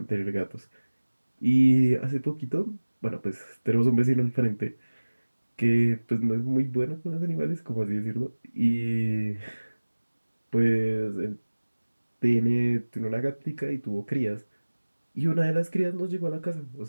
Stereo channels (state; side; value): inverted; both; correlation -1.00